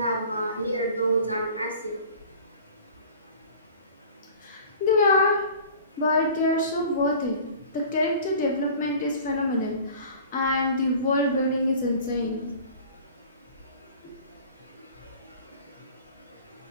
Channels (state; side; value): inverted; both; correlation -0.43